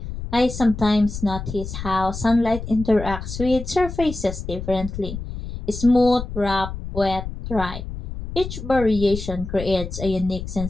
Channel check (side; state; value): left; noise; rumble, 8 dB below the sound